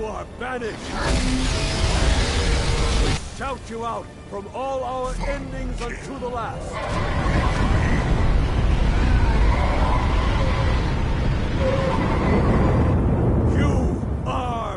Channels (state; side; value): identical; both; correlation 1.00